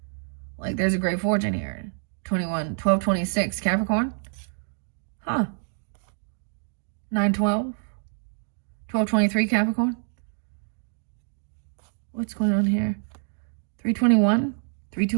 Like, there's a great fortune here. 12, 26, Capricorn. 9, 12. 12, 23, Capricorn. What's going on here? 321,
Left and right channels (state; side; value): silent; left; 60 dB below the other